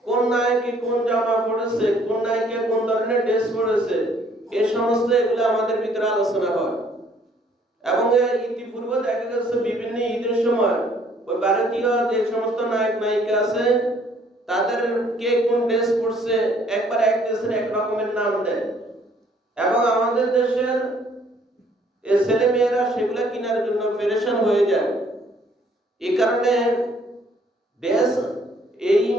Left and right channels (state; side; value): normal; both; correlation 0.62